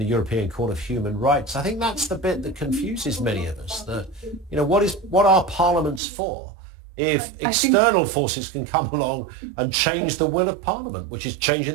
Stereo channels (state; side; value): drops out; left; at 6.0 s